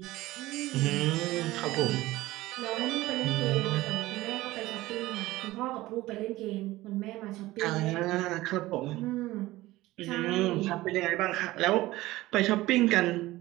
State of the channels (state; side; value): quieter; left; 17.9 dB